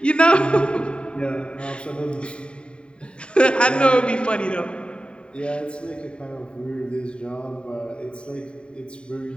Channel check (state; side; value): late; right; 0.053 ms